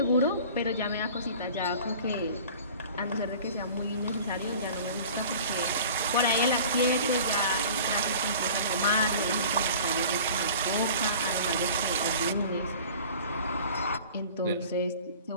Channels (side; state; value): both; inverted; correlation -0.43